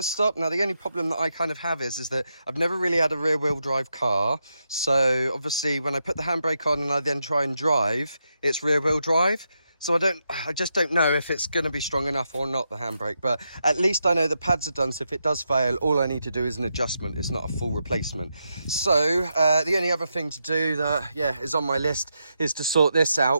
stop. Now, the only problem that I kind of have is that I've never really had a rear wheel drive car. So obviously when I put the handbrake on and I then try and drive, it's rear wheel drive. So I just don't know if it's going to be strong enough or not, the handbrake, but at least I know the pads are done. So if it does fail, all I need to do is an adjustment. It's not a full replacement. So the only other thing to do that, yeah, is on my list is to sort this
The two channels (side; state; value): both; inverted; correlation -0.84